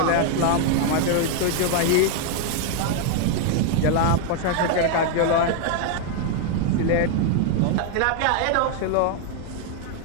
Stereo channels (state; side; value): different; both; correlation 0.00